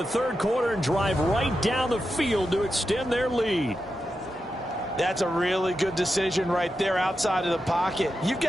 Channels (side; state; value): both; normal; correlation 0.89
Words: 3rd quarter and drive right down the field to extend their lead. That's a really good decision right there outside of the pocket. You've